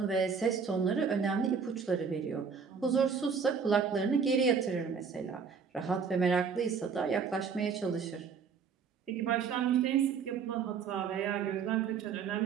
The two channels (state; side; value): quieter; left; 6.1 dB